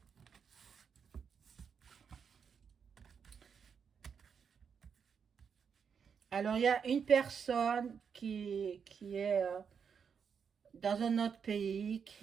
Alors, il y a une personne qui est dans un autre pays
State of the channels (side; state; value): left; quieter; 6.7 dB